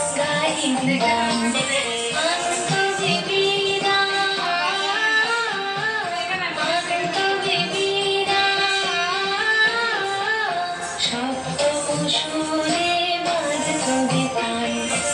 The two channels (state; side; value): identical; both; correlation 1.00